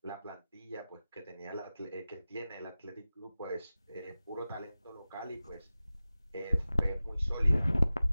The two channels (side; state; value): both; inverted; correlation -0.96